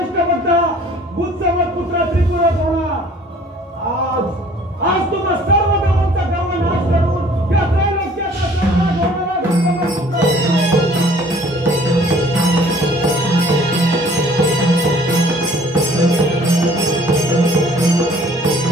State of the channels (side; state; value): both; normal; correlation 0.54